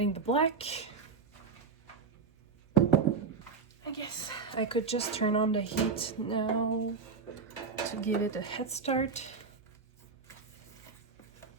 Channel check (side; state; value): left; quieter; 5.2 dB